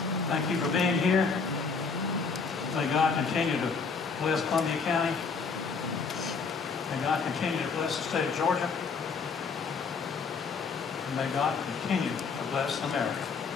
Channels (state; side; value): quieter; right; 5.1 dB